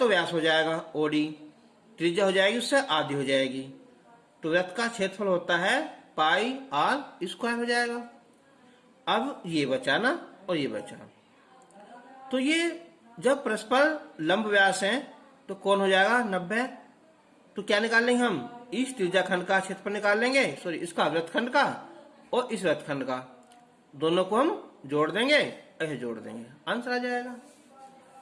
व्यास हो जाएगा OD, त्रिज्या हो जाएगी उससे आधी हो जाएगी, तो वृत्त का क्षेत्रफल होता है पाई r स्क्वायर हो जाएगा। अब ये बचा ना, और ये बचा, तो ये जब परस्पर लंब व्यास हैं तो कौन हो जाएगा 90। तो क्या निकाल लेंगे हम, इस त्रिज्या खंड का क्षेत्रफल निकाल लेंगे, सॉरी इसका वृत्तखंड का और इस वृत्तखंड का, दोनों को हम जोड़ देंगे, ऐसे जोड़ देंगे, आंसर आ जाएगा।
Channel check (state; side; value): identical; both; correlation 1.00